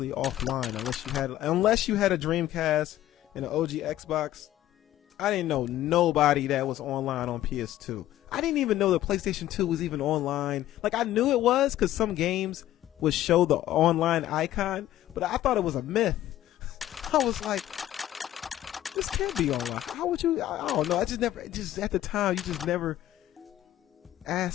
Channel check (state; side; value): quieter; right; 13.5 dB